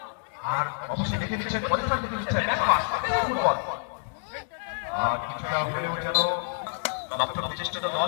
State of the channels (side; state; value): right; silent; digital silence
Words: আর অবশ্যই দেখে নিচ্ছেন পরিষ্কার দেখে নিচ্ছেন ফুটবল। আর কিছুটা হলেও যেন দপ্তর প্রচেষ্টিত